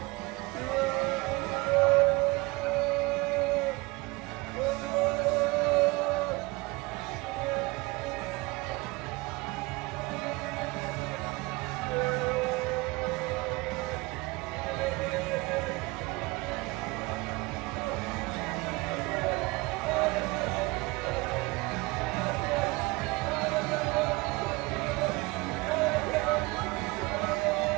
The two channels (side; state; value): left; quieter; 23.9 dB